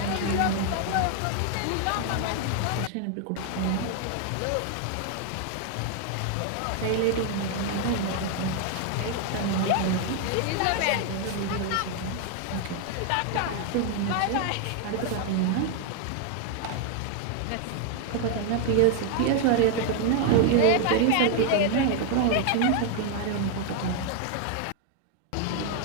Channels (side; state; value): both; different; correlation 0.00